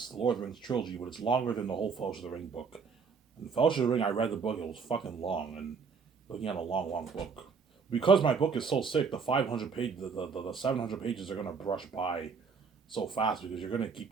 the Lord of the Rings trilogy, but it's longer than the whole Fellowship of the Ring book. And Fellowship of the Ring, I read the book, it was fucking long, and looking at a long, long book. Because my book is so sick, the 500 page, the 700 pages are gonna brush by so fast because you're gonna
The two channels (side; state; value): left; quieter; 5.5 dB